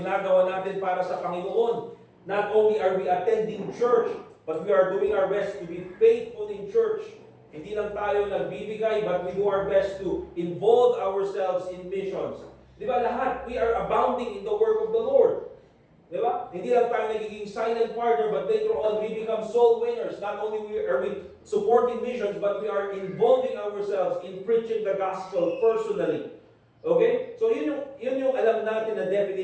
natin para sa Panginoon. Not only are we attending church, but we are doing our best to be faithful in church. Hindi lang tayo nagbibigay, but we do our best to involve ourselves in missions. Di ba lahat? We are abounding in the work of the Lord. Di ba? Hindi lang tayo nagiging silent partner, but later on we become soul winners. Not only are we supporting missions, but we are involving ourselves in preaching the gospel personally. Okay? So yun yung alam natin na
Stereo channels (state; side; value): identical; both; correlation 1.00